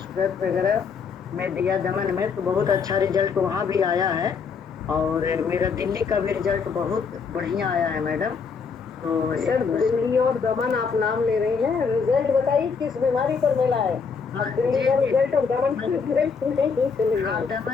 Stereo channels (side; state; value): right; quieter; 5.6 dB